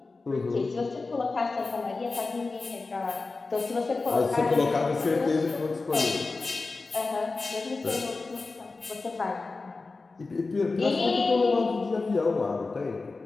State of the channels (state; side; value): quieter; right; 3.8 dB